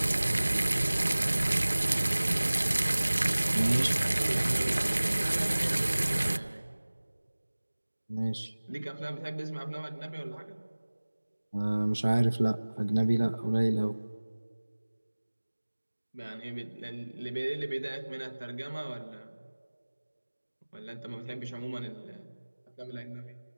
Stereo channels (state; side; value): inverted; both; correlation -1.00